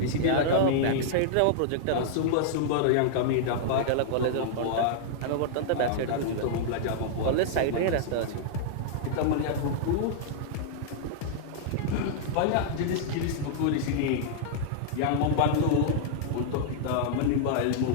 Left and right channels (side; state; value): both; different; correlation -0.02